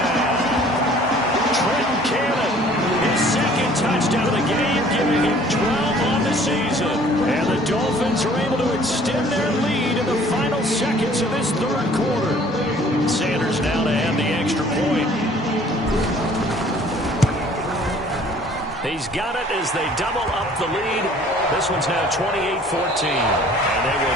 Trenton Cannon, his 2nd touchdown of the game, giving him 12 on the season. And the Dolphins are able to extend their lead in the final seconds of this 3rd quarter. Sanders now to add the extra point. He's got it as they double up the lead. This one's now 28-14. And they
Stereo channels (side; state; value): both; normal; correlation 0.54